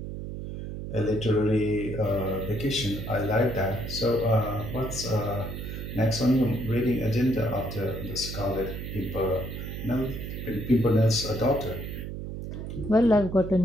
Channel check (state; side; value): noise; right; hum, 7 dB below the sound